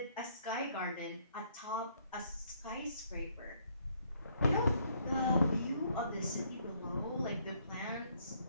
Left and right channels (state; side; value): inverted; both; correlation -0.67